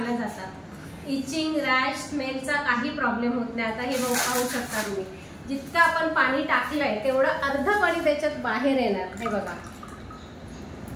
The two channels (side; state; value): both; identical; correlation 1.00